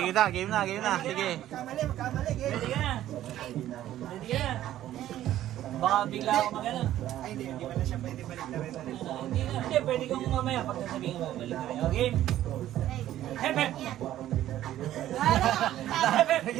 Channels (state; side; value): quieter; left; 12.9 dB